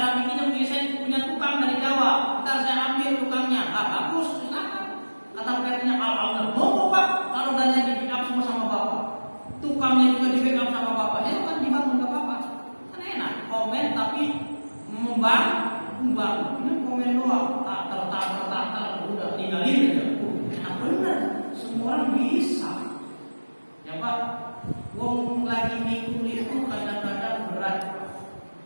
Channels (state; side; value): inverted; both; correlation -1.00